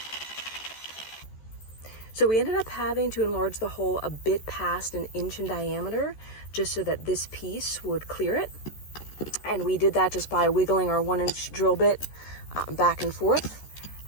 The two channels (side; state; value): right; late; 14 ms